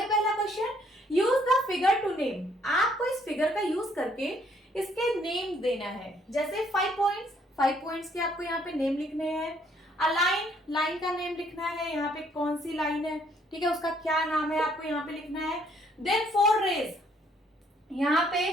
पहला question? Use the figure to name. आपको इस फिगर का यूज करके इसके नेम देना है। जैसे 5 पॉइंट्स के आपको यहाँ पे नेम लिखने हैं। अ लाइन का नेम लिखना है। यहाँ पे कौन सी लाइन है, ठीक है, उसका क्या नाम है आपको यहाँ पे लिखना है। देन 4 रेज, यहाँ पे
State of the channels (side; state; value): both; normal; correlation 0.66